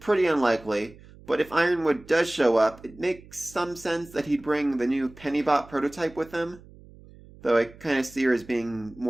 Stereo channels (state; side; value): noise; right; hum, 22 dB below the sound